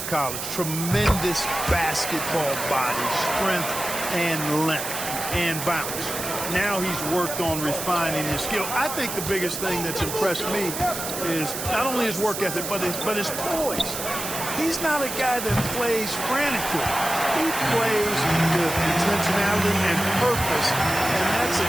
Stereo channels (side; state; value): right; noise; hiss, 6 dB below the sound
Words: college. Tremendous basketball body, strength and length and bounce. Now he's worked on refining his skill. I think the biggest thing that's impressed me is not only his work ethic, but his poise. He's not a guy that plays frantically. He plays with intentionality and purpose, and that's a